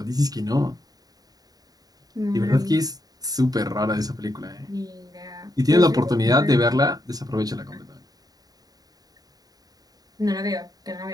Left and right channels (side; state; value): left; late; 0.18 ms